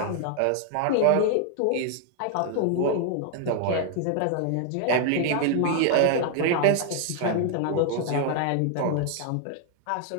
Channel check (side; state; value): both; different; correlation 0.00